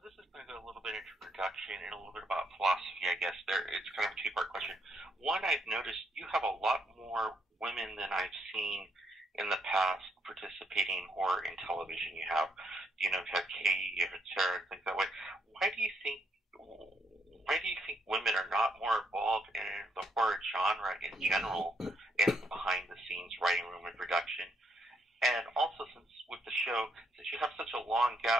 this is going to go a little bit into production and a little bit about philosophy, I guess. It's kind of a 2-part question. One, I've noticed you have a lot more women than I've seen in the past participating in horror in television. You have Katie, you have Sarah, things that way. Why do you think women are not more involved in the horror genre in general, in behind the scenes writing room and production? And also, since you have such a long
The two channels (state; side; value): normal; both; correlation 0.75